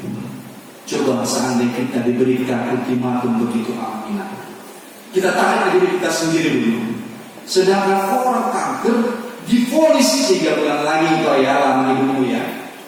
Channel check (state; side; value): identical; both; correlation 1.00